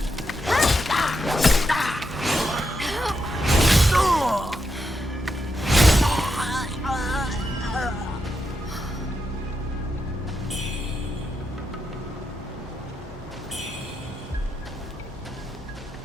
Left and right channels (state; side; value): normal; both; correlation 0.84